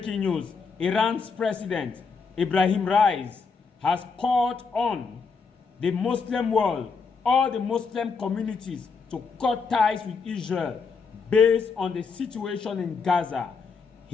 news: Iran's president, Ibrahim Raisi, has called on the Muslim world, all the Muslim communities, to cut ties with Israel based on the situation in Gaza.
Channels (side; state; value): right; quieter; 5.1 dB